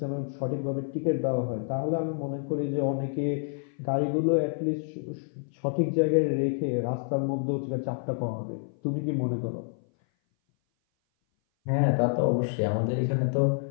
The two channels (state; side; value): silent; right; 57 dB below the other